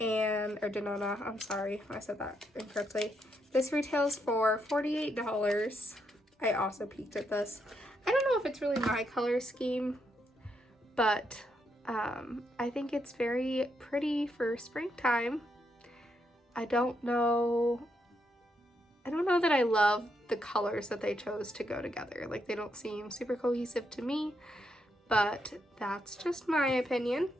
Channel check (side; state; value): both; normal; correlation 0.79